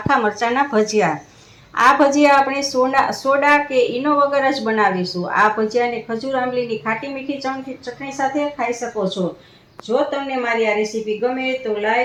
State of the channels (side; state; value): both; identical; correlation 1.00